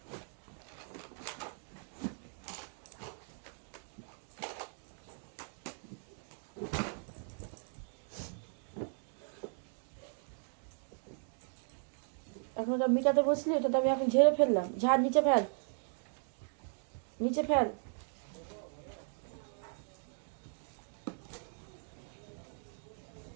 এখন ওটা মিটাতে বসলি, ওটা তো আমি এখন ঝেড়ে ফেললাম। ঝাড় নিচে ফেল, নিচে ফেল।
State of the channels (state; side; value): silent; left; 53 dB below the other